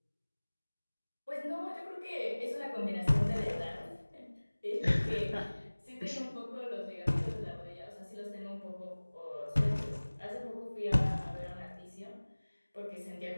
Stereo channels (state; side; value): inverted; both; correlation -1.00